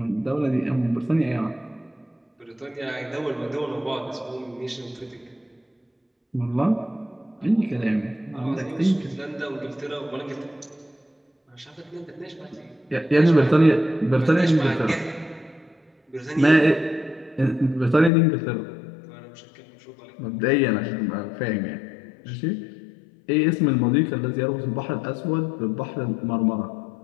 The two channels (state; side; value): drops out; right; at 18.1 s